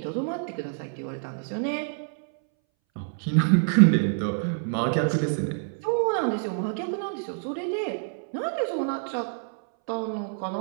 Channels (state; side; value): silent; left; 60 dB below the other